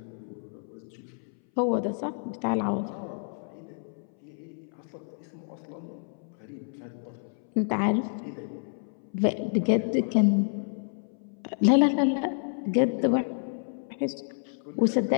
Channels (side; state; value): right; silent; 58 dB below the other